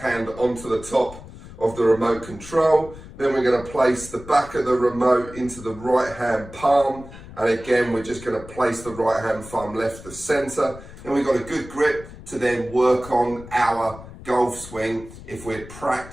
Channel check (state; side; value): noise; left; rumble, 16 dB below the sound